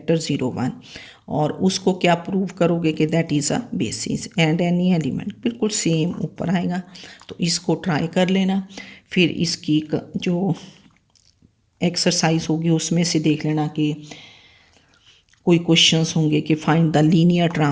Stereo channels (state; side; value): identical; both; correlation 1.00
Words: 0 1, और उसको क्या प्रूव करोगे कि that is a basis and any element, बिल्कुल सेम ऊपर आएगा। तो इसको ट्राई कर लेना, फिर इसकी जो एक्सरसाइज होगी उसमें से देख लेना कि कोई क्वेश्चंस होंगे कि फाइंड द लीनियर